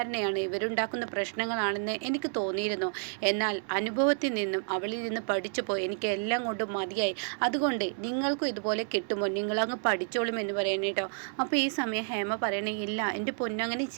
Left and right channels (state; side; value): silent; left; 55 dB below the other